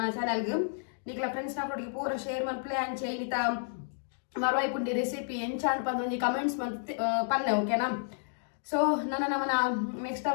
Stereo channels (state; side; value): silent; right; digital silence